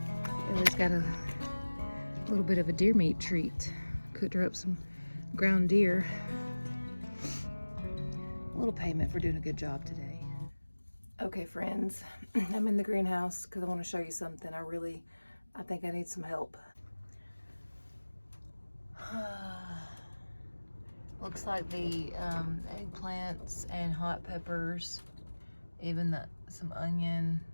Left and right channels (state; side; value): inverted; both; correlation -1.00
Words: Ellie's got a little bit of a deer meat treat. Cooked her up some ground deer. A little payment for doing a good job today. Okay, friends, I'm in the greenhouse because I want to show you something. I think I need some help. Looks like the eggplants and hot peppers, even some onion.